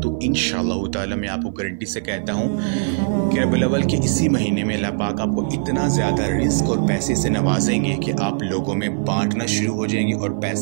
इंशाअल्लाह ताला मैं आपको गारंटी से कहता हूँ कि रबीउल अव्वल के इसी महीने में अल्लाह पाक आपको इतना ज़्यादा रिज़्क़ और पैसे से नवाजेंगे कि आप लोगों में बांटना शुरू हो जाएंगे और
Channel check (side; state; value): left; silent; 56 dB below the other